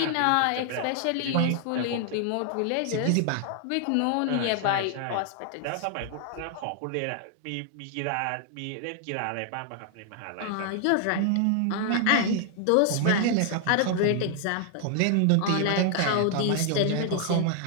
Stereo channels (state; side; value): different; both; correlation 0.00